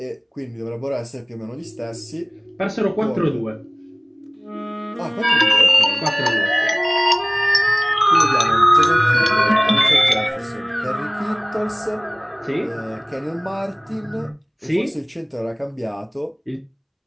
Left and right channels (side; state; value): both; identical; correlation 1.00